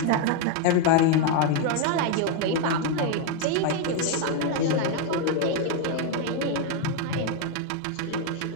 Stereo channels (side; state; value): both; different; correlation 0.01